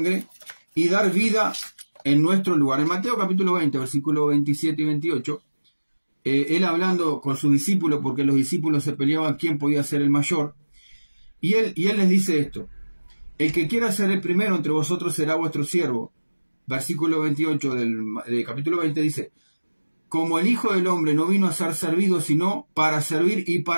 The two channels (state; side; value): inverted; both; correlation -1.00